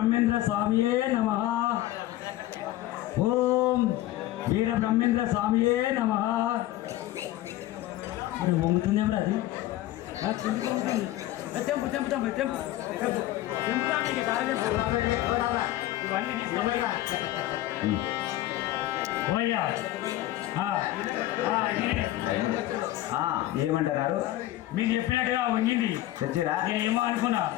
స్వామియే నమః. ఓం వీర బ్రహ్మేంద్ర స్వామియే నమః. వంగుతుంది ఎవరు? అది తెంపు తెంపు తెంపు తెంపు ఇవన్నీ తీసుకున్నాయ్యా. ఆ, ఆ, ఈయనే. ఏమంటున్నారు? మీరు చెప్పినట్టుగా వంగింది తెచ్చిరా? నేనేమో అనుకున్నా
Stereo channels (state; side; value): quieter; right; 15.1 dB